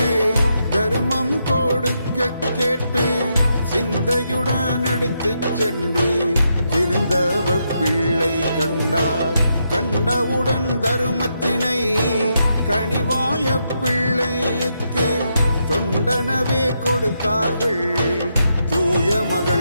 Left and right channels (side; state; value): both; inverted; correlation -0.81